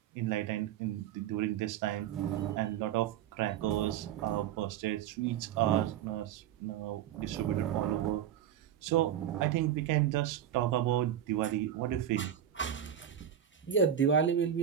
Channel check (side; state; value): left; quieter; 10.1 dB